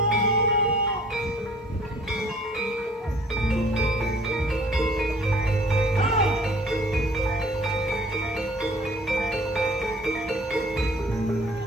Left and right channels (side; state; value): both; normal; correlation 0.53